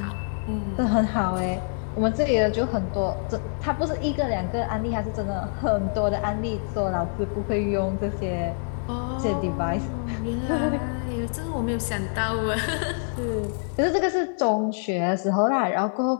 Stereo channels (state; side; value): silent; right; 57 dB below the other